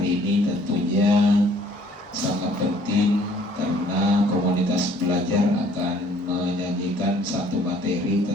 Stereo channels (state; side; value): normal; both; correlation 0.58